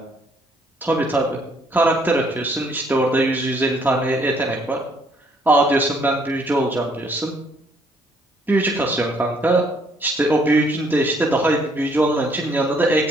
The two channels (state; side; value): normal; both; correlation 0.66